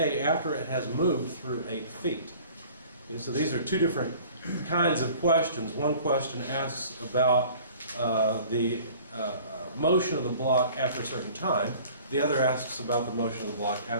after it has moved through 8 feet. Okay, so these are two different kinds of questions. One question asks about the motion of the block after a certain time. The other asks about the motion of the block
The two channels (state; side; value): inverted; both; correlation -0.48